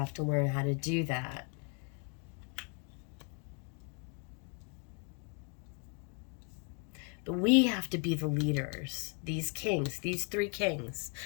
how to do that. But we have to be the leaders. These kings, these three kings,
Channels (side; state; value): right; quieter; 37.6 dB